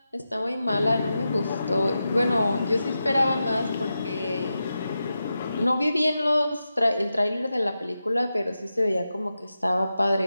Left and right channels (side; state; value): both; inverted; correlation -0.90